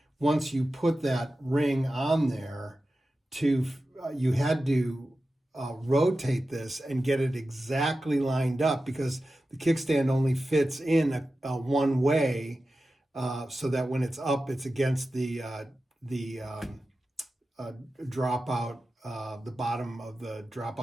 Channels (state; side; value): normal; both; correlation 0.93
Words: once you put that ring on there, you had to rotate this and get it exactly lined up, because the kickstand only fits in a one way, so that when it's up, it's against the dropout, the bottom of the